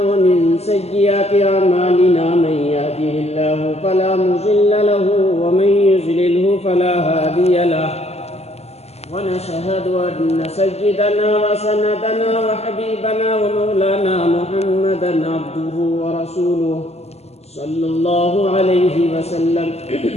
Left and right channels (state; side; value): late; right; 0.30 ms